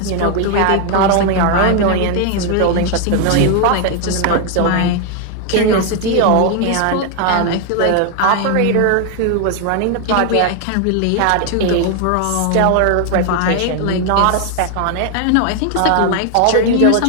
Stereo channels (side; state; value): both; different; correlation 0.00